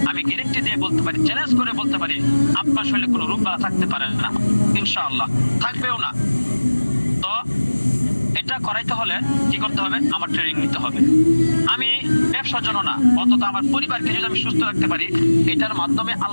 আমি গ্যারান্টি দিয়ে বলতে পারি, চ্যালেঞ্জ করে বলতে পারি, আপনার শরীরে কোনো রোগ বালা থাকতে পারে না ইনশাআল্লাহ, থাকবেও না। তো এটা করাইতে হলে কি করতে হবে? আমার ট্রেনিং নিতে হবে। আমি ব্যবসার জন্য না, অন্তত আমার পরিবারকে যদি আমি সুস্থ রাখতে পারি, এটার মাধ্যমে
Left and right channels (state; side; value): inverted; both; correlation -1.00